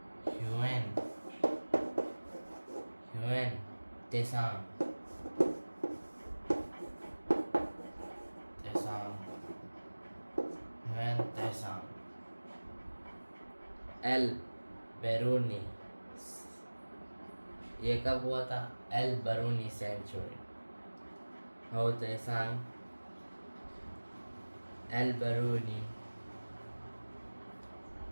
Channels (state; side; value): inverted; both; correlation -1.00